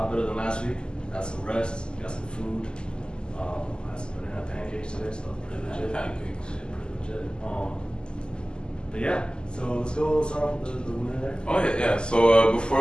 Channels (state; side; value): late; right; 0.048 ms